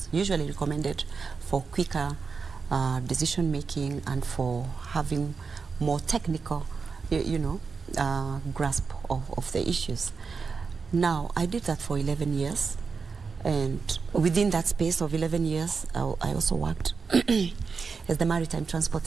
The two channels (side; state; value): left; quieter; 5.0 dB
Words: usually recommended for quicker decision making and for having more technical, grasp of the issues. Now, I did that for 11 years. And within that space of 11 years, I also worked as the maritime